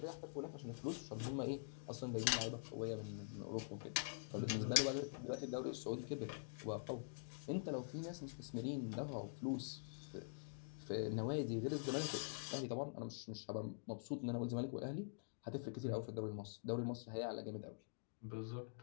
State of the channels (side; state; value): right; silent; digital silence